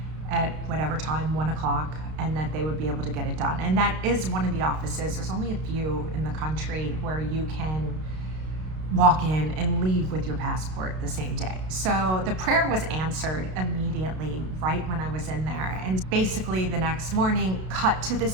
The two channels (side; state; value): left; late; 32 ms